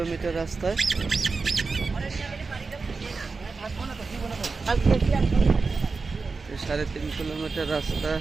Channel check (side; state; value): left; quieter; 4.3 dB